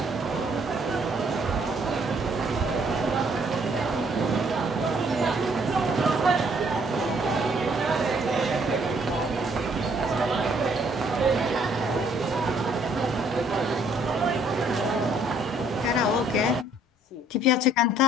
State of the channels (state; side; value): normal; both; correlation 0.64